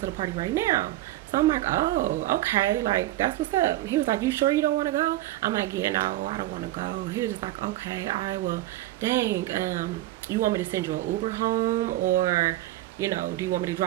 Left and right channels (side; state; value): left; quieter; 15.5 dB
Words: the party right now. So I'm like, oh, okay, like, that's what's up. He was like, you sure you don't want to go? I'm like, yeah, no, I don't want to go. He was just like, okay, all right, well, dang, you want me to send you an Uber home, or you know, do you want me to